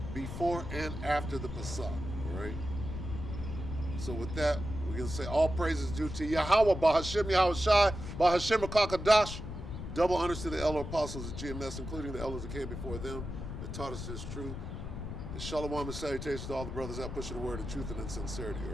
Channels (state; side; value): noise; left; rumble, 7 dB below the sound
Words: Before and after the Pesach, all right? So with that, we're going to say all praises due to Yahuwah, Ba'Hashem Yahushai, Ba'Hashem Rakakadash. Double honors to the elder apostles of GMS, including the elders that came before them, that taught us this truth. And shalom and salutations to all the brothers out pushing the word of truth and in sincerity,